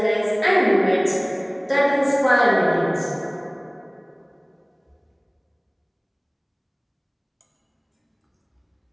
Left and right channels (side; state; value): both; identical; correlation 1.00